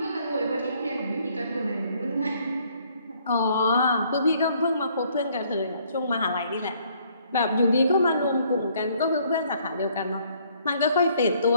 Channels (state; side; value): inverted; both; correlation -0.64